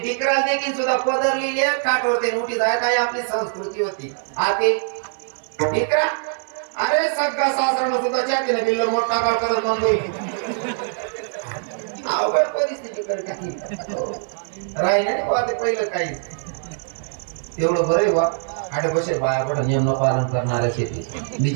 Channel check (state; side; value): silent; left; digital silence